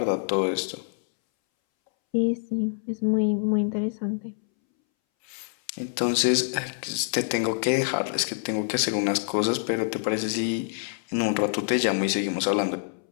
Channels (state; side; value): silent; right; 61 dB below the other